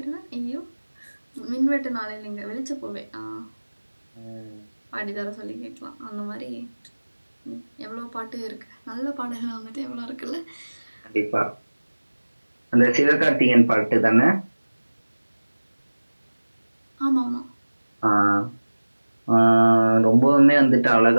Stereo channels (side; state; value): both; inverted; correlation -1.00